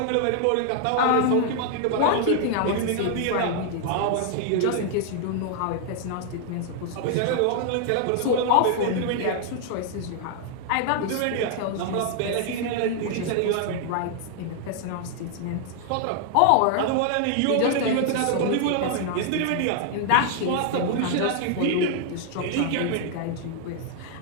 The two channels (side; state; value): both; different; correlation 0.00